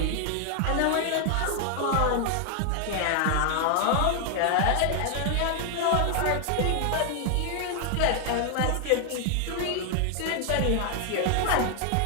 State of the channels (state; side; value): different; both; correlation 0.00